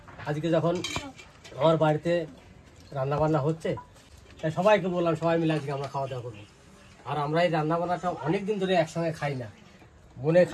আজকে যখন আমার বাড়িতে রান্নাবান্না হচ্ছে, তাই সবাইকে বললাম সবাই মিলে আজকে আমরা খাওয়া দাওয়া করবো। আর আমরা এই রান্নাবান্নাটা অনেক দিন ধরে একসঙ্গে খাই না। বোনে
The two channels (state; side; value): identical; both; correlation 1.00